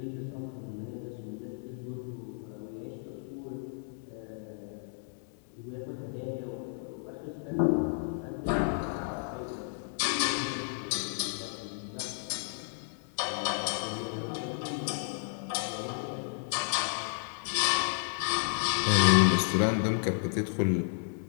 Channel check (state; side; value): silent; right; 56 dB below the other